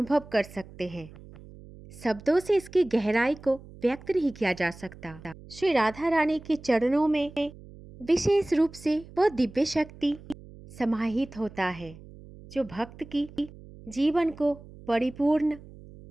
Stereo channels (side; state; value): right; noise; hum, 19 dB below the sound